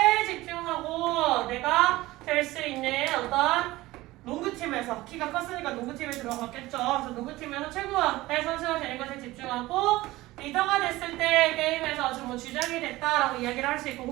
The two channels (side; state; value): left; quieter; 18.4 dB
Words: 집중하고 내가 될 수 있는 어떤 농구팀에서 키가 컸으니까 농구팀에 들어갔겠죠. 그래서 농구팀에서 최고의 선수가 되는 것에 집중하고 리더가 됐을 때 게임에서 뭐 주장이 됐다라고 이야기를 할 수 있고